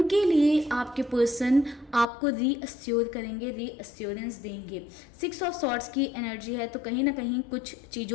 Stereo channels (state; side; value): drops out; right; at 2.1 s